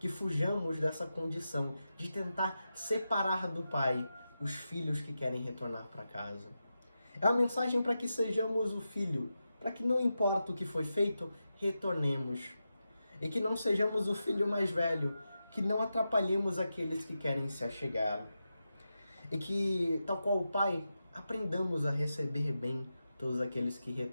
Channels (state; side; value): inverted; both; correlation -0.90